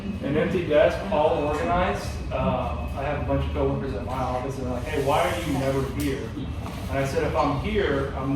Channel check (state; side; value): identical; both; correlation 1.00